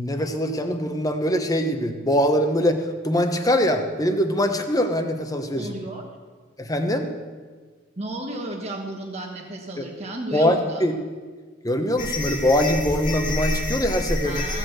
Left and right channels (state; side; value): normal; both; correlation 0.57